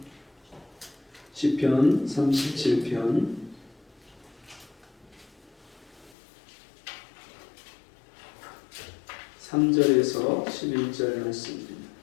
시편 37편 3절에서 11절 말씀입니다.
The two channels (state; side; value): drops out; right; at 6.1 s